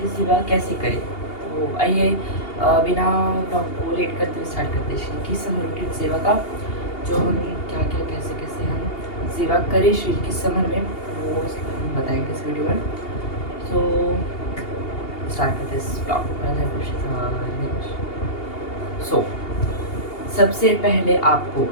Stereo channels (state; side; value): late; right; 2.8 ms